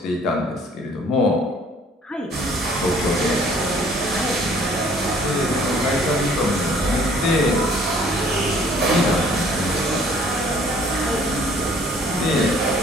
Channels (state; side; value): normal; both; correlation 0.57